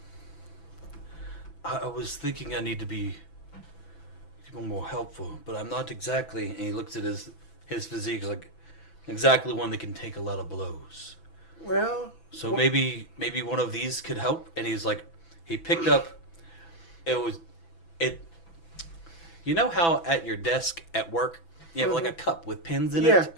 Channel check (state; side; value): late; right; 6.0 ms